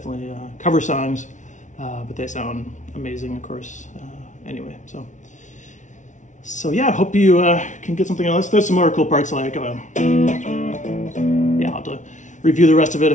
cover songs, but they sound amazing, of course. Anyway, so yeah, I hope you can get something else. There's some more cool parts like, yeah, I'll have to review the rest of it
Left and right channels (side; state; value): right; late; 0.36 ms